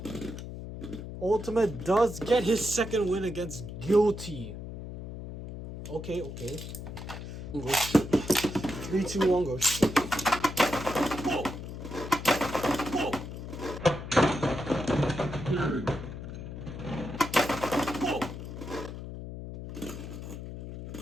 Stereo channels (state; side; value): noise; left; hum, 9 dB below the sound